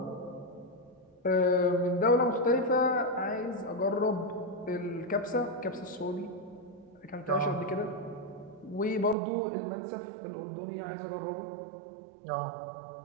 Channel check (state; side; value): drops out; left; at 9.2 s